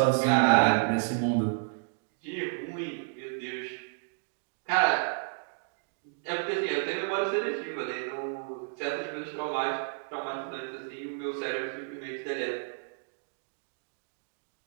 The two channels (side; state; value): left; silent; digital silence